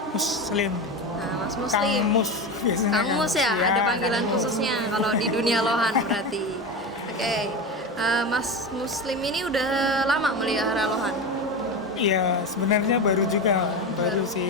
Muslim. Nah, Mas Muslim. Kang Mus biasanya. Kang Mus ya, Ya, ada panggilan Kang Mus. khususnya kalau di dunia lohan berarti. Oke, Mas Muslim ini udah lama melihara lohan? Iya, sebenarnya baru juga, baru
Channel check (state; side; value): normal; both; correlation 0.22